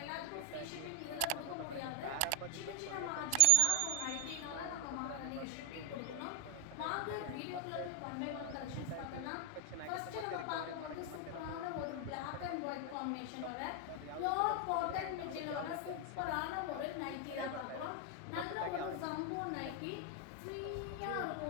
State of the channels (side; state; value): both; different; correlation 0.00